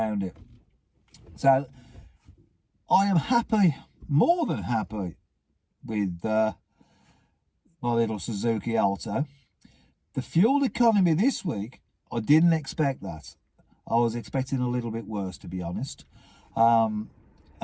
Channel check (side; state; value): both; identical; correlation 1.00